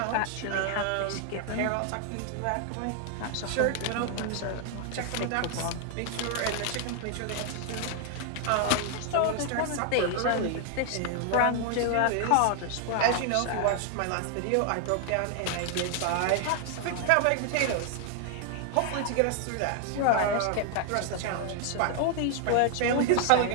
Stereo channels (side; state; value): both; different; correlation 0.00